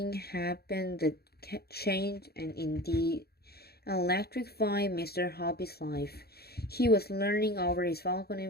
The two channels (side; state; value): right; late; 0.46 ms